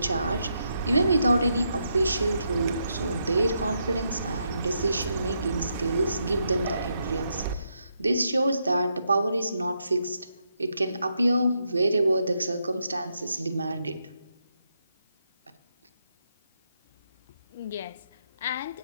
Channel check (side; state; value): both; inverted; correlation -0.80